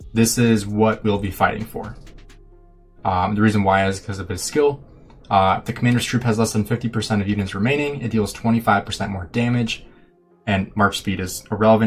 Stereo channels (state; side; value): identical; both; correlation 1.00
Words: This is what we'll be fighting for. The reason why is because of his skill. If the commander's troop has less than 50% of units remaining, it deals 25% more damage, and march speed is